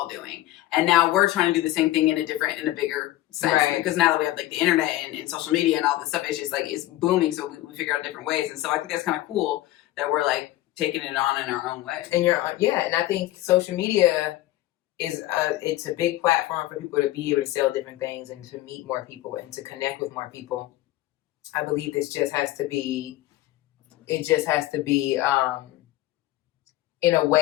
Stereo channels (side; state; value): right; quieter; 15.9 dB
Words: doing. And now we're trying to do the same thing in a bigger sense. Right. Because now that we have like the internet and social media and all this stuff, it's just like, it's booming. So we figure out different ways. And so I think that's kind of cool that we're like taking it on in our own way. And and I think social media is it's a big platform for people to be able to sell different things and to meet more people and to connect with more people. I believe it just has to be in a